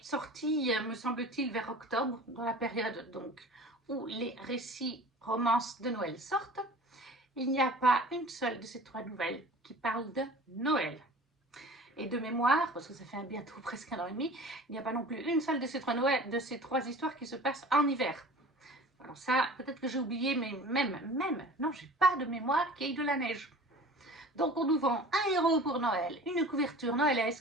sorti, me semble-t-il, vers octobre, dans la période donc où les récits romances de Noël sortent. Il n'y a pas une seule de ces 3 nouvelles qui parle de Noël. Et de mémoire, parce que ça fait bientôt presque 1 an et demi, il n'y a pas non plus une seule de ces 3 histoires qui se passent en hiver. Alors ça, peut-être que j'ai oublié, mais non, j'ai pas de mémoire qu'il y ait de la neige. Donc on nous vend un héros pour Noël, une couverture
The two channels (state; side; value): normal; both; correlation 0.42